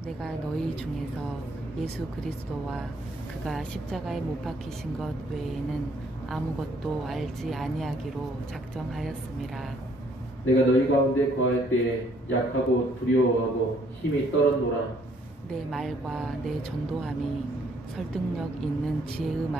내가 너희 중에서 예수 그리스도와 그가 십자가에 못 박히신 것 외에는 아무것도 알지 아니하기로 작정하였음이라. 내가 너희 가운데 거할 때 약하고 두려워하고 힘이 떨었노라. 내 말과 내 전도함이 설득력 있는 지혜의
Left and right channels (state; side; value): normal; both; correlation 0.65